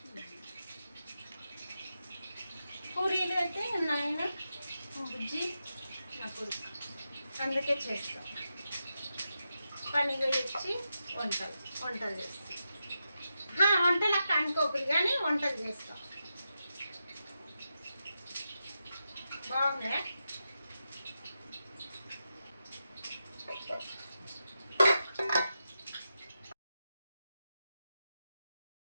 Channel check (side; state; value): both; inverted; correlation -0.88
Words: పూరీలు అయితే నాయన బుజ్జి నాకు అందుకే చేస్తాం. పనిగా వచ్చి వంటలు చేస్తాం. వంటలకు అనుకోకూడదు, కానీ వంటలు చేస్తాం. బాగున్నాయా?